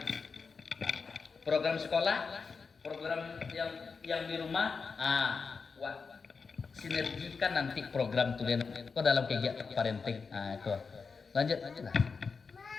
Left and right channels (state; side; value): quieter; right; 5.0 dB